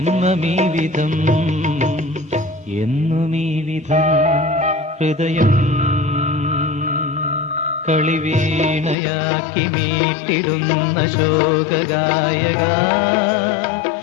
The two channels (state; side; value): drops out; right; at 9.0 s